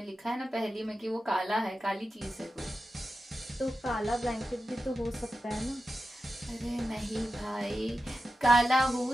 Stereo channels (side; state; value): both; normal; correlation 0.91